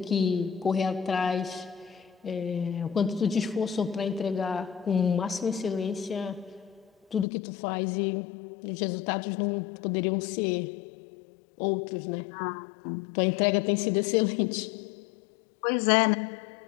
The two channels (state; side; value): drops out; right; at 7.2 s